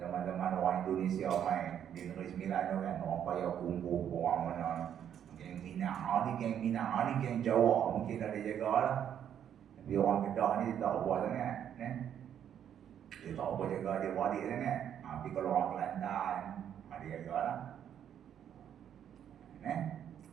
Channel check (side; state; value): left; quieter; 9.4 dB